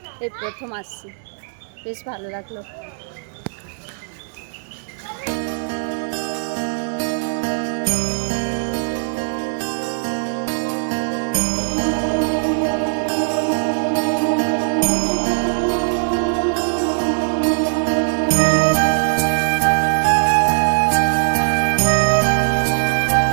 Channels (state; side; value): silent; left; digital silence